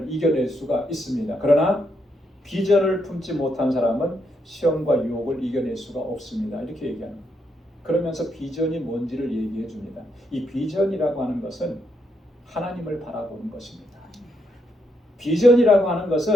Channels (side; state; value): both; normal; correlation 0.78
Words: 이겨낼 수가 있습니다. 그러나 비전을 품지 못한 사람은 시험과 유혹을 이겨낼 수가 없습니다. 이렇게 얘기하는 거예요. 그러면서 비전이 뭔지를 얘기해 줍니다. 이 비전이라고 하는 것은 하나님을 바라보는 것입니다. 비전이라고 하는